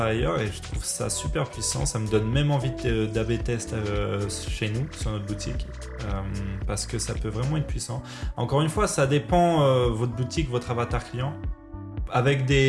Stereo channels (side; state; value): both; identical; correlation 1.00